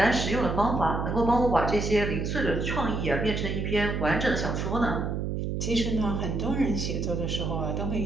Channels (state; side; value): noise; right; hum, 2 dB below the sound